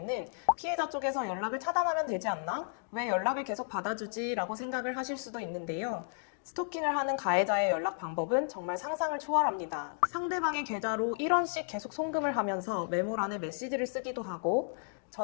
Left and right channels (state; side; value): silent; right; digital silence